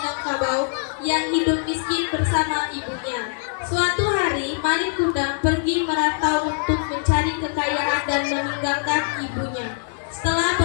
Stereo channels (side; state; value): right; silent; digital silence